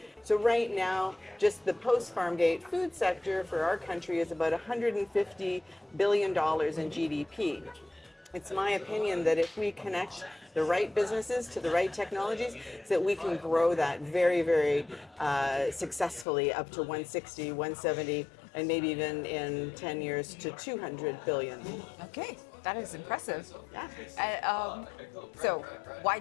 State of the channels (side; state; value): right; drops out; at 16.2 s